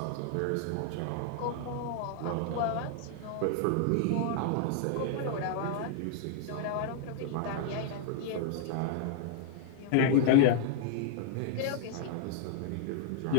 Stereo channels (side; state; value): both; different; correlation 0.00